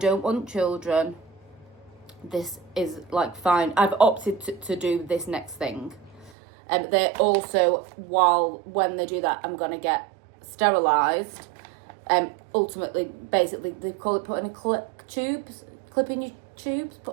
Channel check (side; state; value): left; drops out; at 6.3 s